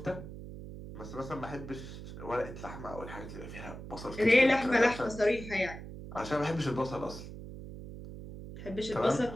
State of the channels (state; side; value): noise; right; hum, 11 dB below the sound